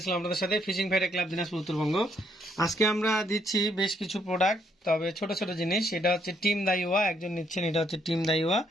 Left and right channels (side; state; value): both; normal; correlation 0.72